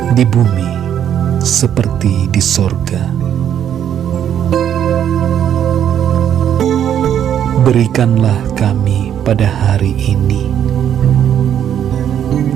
di bumi seperti di sorga. Berikanlah kami pada hari ini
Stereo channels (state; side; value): quieter; left; 9.6 dB